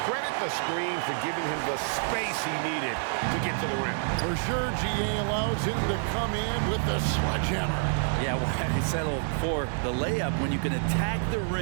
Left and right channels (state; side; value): silent; left; digital silence